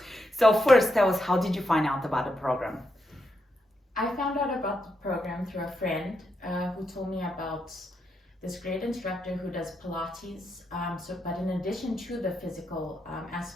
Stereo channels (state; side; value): normal; both; correlation 0.83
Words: So first, tell us, how did you find out about the program? I found out about the program through a friend who told me about this great instructor who does Pilates. But in addition to the physical